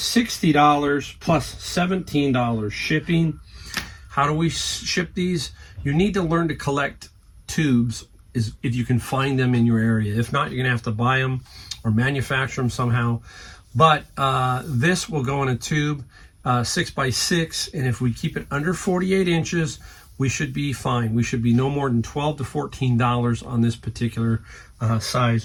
plus $17 shipping. How do we ship these? You need to learn to collect tubes if you can find them in your area. If not, you're going to have to buy them or manufacture them somehow. But this will go in a tube 6x6, and if we keep it under 48 inches, we should be fine. We should be no more than $12 to $14 on this particular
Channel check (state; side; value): identical; both; correlation 1.00